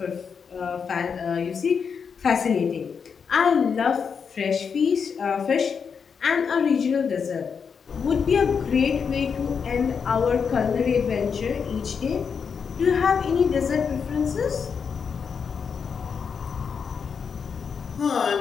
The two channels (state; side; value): quieter; right; 6.3 dB